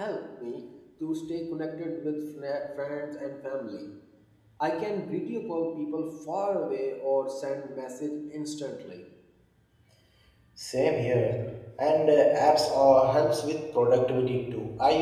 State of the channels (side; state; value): both; identical; correlation 1.00